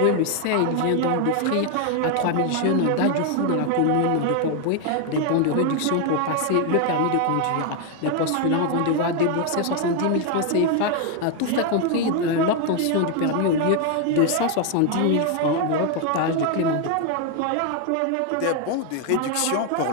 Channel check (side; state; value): both; different; correlation 0.01